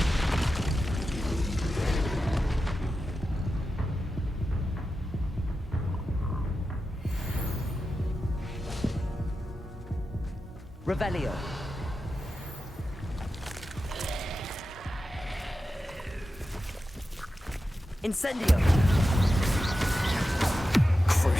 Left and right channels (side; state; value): both; normal; correlation 0.91